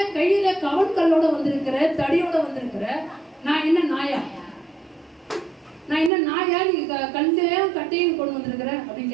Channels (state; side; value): drops out; left; at 6.1 s